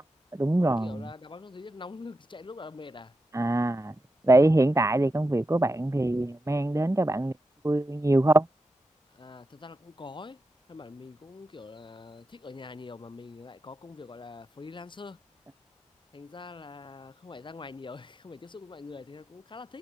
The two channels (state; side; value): normal; both; correlation 0.89